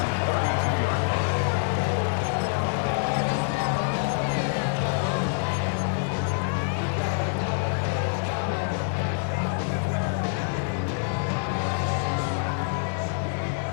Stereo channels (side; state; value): right; silent; digital silence